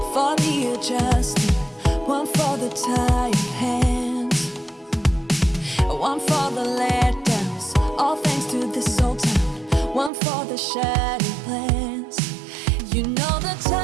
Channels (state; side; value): drops out; left; at 10.1 s